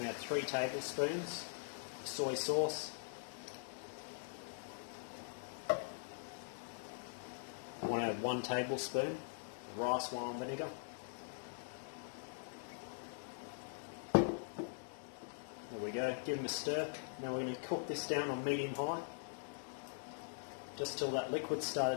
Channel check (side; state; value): right; silent; digital silence